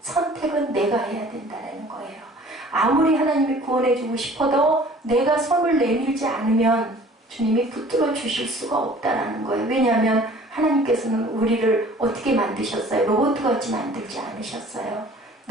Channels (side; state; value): both; normal; correlation 0.50